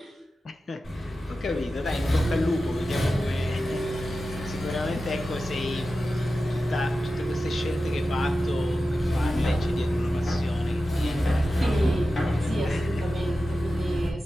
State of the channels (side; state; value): both; normal; correlation 0.93